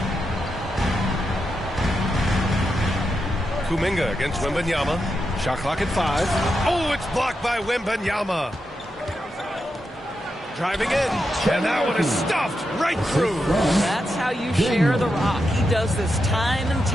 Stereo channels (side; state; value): both; normal; correlation 0.86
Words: Kuminga against Wembanyama. Shot clock at 5. Oh, it's blocked by Wembanyama. Driving in. And that one is stuffed right through. That's how you share the rock. He does this time and